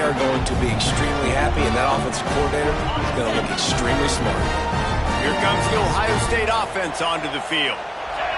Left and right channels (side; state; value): both; identical; correlation 1.00